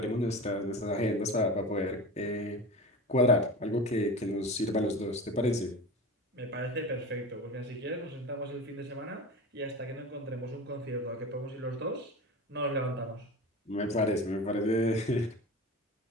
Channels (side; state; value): both; normal; correlation 0.30